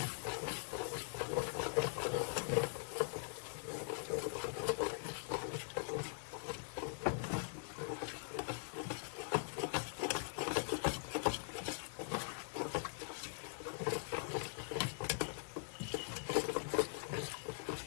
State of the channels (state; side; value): silent; right; digital silence